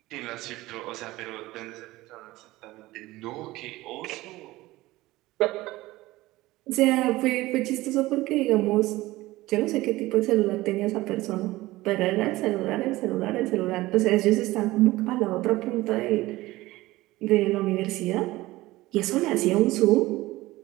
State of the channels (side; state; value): left; quieter; 18.4 dB